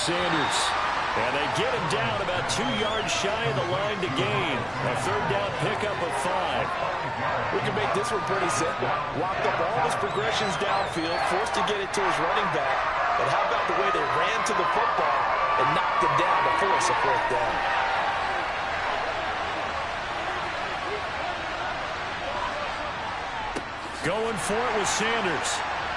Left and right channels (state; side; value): identical; both; correlation 1.00